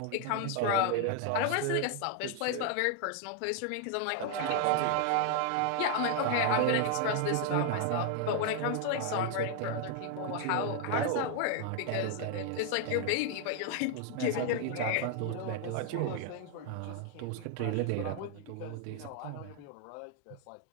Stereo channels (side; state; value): both; different; correlation 0.00